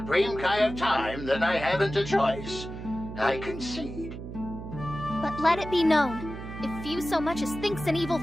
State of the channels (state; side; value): noise; right; hum, 10 dB below the sound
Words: Kai of Time, then I haven't a choice. I concede. But let it be known, if Fuse so much as thinks an evil